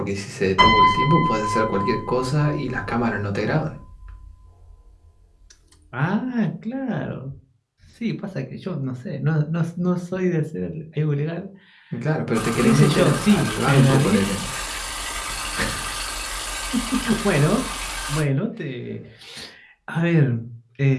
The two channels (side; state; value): both; identical; correlation 1.00